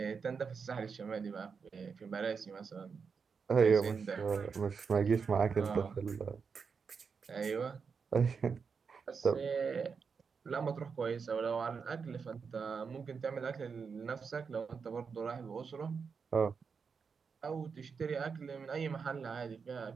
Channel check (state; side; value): quieter; left; 5.7 dB